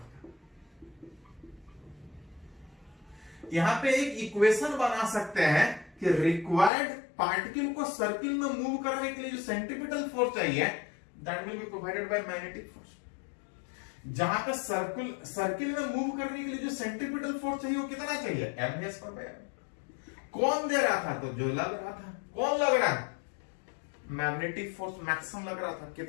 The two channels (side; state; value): right; drops out; at 6.7 s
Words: यहां पे एक इक्वेशन बना सकते हैं कि रिक्वायर्ड पार्टिकल को सर्किल में मूव करने के लिए जो सेंट्रीपिटल फोर्स चाहिए that will be provided by magnetic force. जहां पे सर्किल में मूव करने के लिए जो सेंट्रीपिटल फोर्स चाहिए वो कितना चाहिए? mv²। कौन दे रहा था? तो जो लग रहा था। कौन लग रहा है? मैग्नेटिक फोर्स मैक्सिमम लग रहा था।